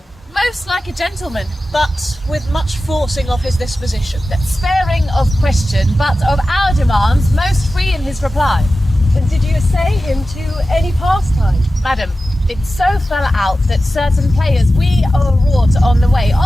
Most like a gentleman, But with much forcing of his disposition. sparing of question, but of our demands most free in his reply. And did you essay him to any pastime? Madam, it so fell out that certain players we o'erwrought on the way,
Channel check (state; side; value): normal; both; correlation 0.94